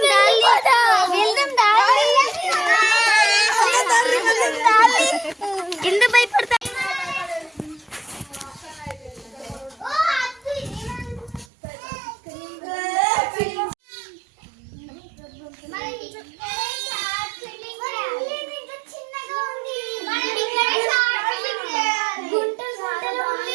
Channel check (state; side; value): drops out; left; at 11.5 s